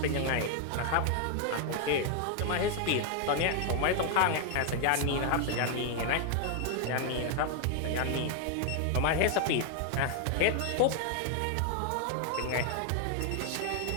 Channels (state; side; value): different; both; correlation 0.00